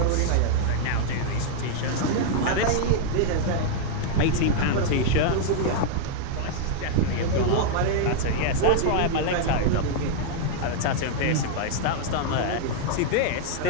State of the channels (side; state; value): both; different; correlation 0.00